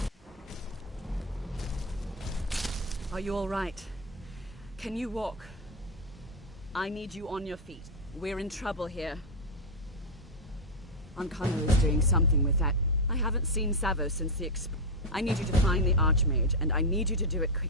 Are you all right? Can you walk? I need you on your feet. We're in trouble here. Ancano is doing something with that. I haven't seen Savo since the I need you to find the Archmage, and I need you to do it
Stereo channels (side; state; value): both; normal; correlation 0.04